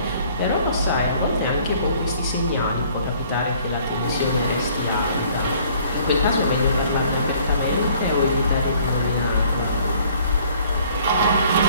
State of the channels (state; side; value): inverted; both; correlation -0.58